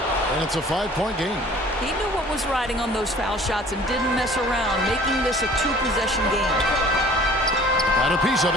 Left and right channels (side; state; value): both; normal; correlation 0.50